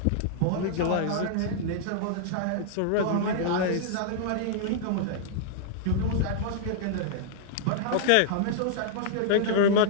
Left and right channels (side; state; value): both; different; correlation -0.01